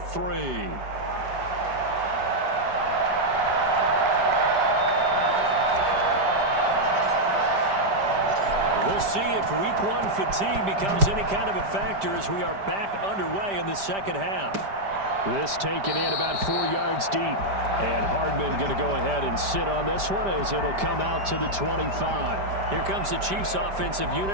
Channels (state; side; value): late; left; 5.1 ms